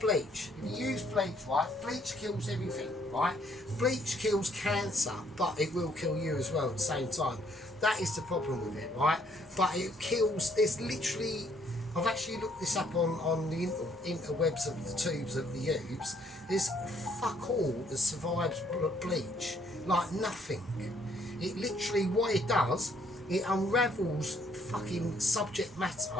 If you use bleach, right, bleach kills everything, right? Bleach kills cancer, but it will kill you as well at the same time. That is the problem with it, right? But it kills, there's literally, I've actually looked this up on the interwebs of the tubes of the tubes. There's fuck all that survives bleach, like nothing. It literally, what it does, it unravels fucking subject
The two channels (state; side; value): normal; both; correlation 0.67